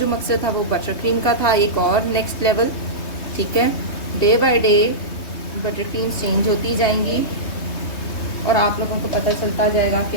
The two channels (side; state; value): right; late; 3.2 ms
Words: मकसद था वो बटर क्रीम का था, एक और नेक्स्ट लेवल, ठीक है। Day by day butter cream change होती जाएंगी और आप लोगों को पता चलता जाएगा कि